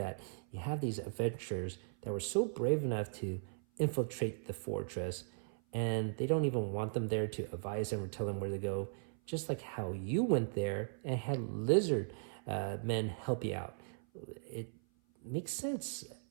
you have these adventurers that were so brave enough to infiltrate the fortress, and they don't even want them there to advise them or tell them where to go, just like how you went there and had lizard men help you out. It makes sense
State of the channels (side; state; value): left; silent; 52 dB below the other